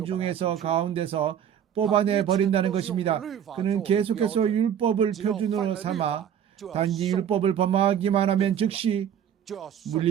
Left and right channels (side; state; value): left; quieter; 9.2 dB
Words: 가운데서 뽑아내 버린다는 것입니다. 그는 계속해서 율법을 표준으로 삼아 단지 율법을 범하기만 하면 즉시